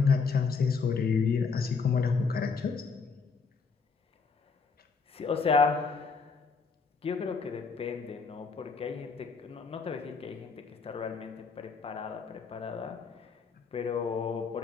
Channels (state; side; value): quieter; right; 5.0 dB